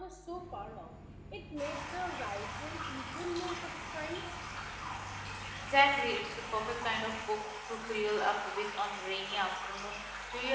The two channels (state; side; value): identical; both; correlation 1.00